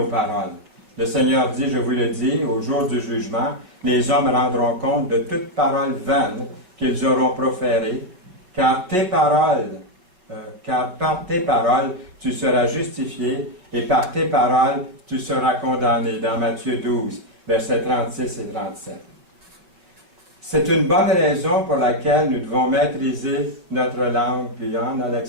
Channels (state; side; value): late; left; 5.5 ms